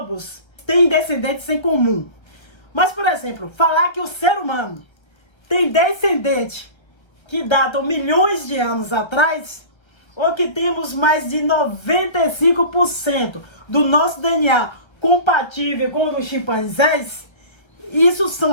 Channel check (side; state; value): right; late; 1.3 ms